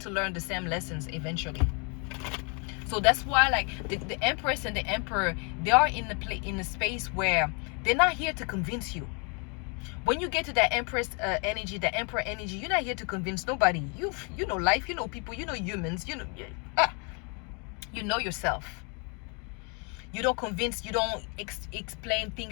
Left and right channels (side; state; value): right; quieter; 35.3 dB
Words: to learn the same lessons eventually. So that's why, like, the Empress and the Emperor, they are in a space where they're not here to convince you. When you get to that Empress energy, the Emperor energy, you're not here to convince nobody. You know life, you know people, you know humans, you know yourself. You don't convince, you don't explain